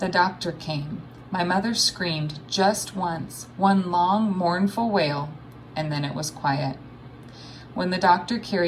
doctor came. My mother screamed just once, one long, mournful wail, and then it was quiet. When the doctor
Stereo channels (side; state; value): both; identical; correlation 1.00